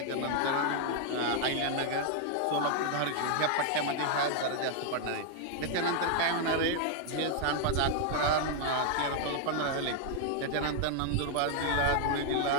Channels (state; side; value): different; both; correlation 0.00